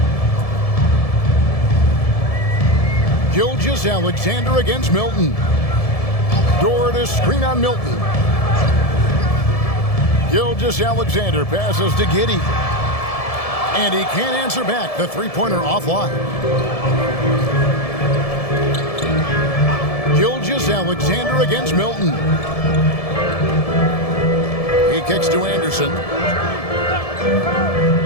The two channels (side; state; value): right; late; 1.7 ms